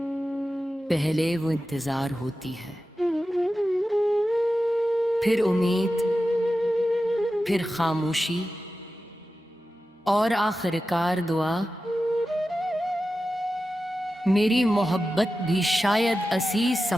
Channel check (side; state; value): both; normal; correlation 0.93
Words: पहले वो इंतजार होती है, फिर उम्मीद, फिर खामोशी और आखिरकार दुआ। मेरी मोहब्बत भी शायद इसी